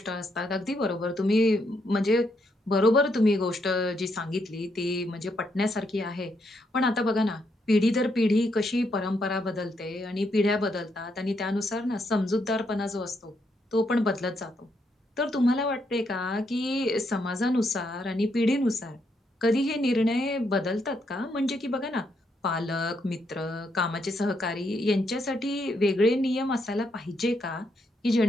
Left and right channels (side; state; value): both; normal; correlation 0.77